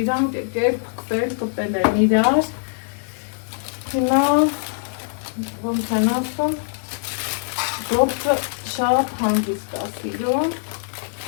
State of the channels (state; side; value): silent; right; digital silence